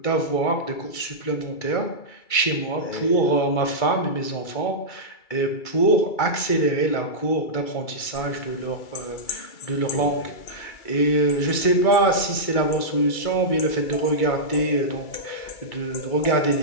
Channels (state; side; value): late; right; 2.3 ms